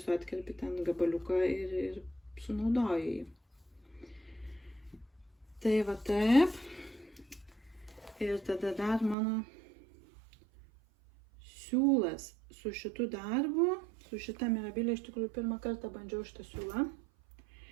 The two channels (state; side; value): drops out; left; at 9.2 s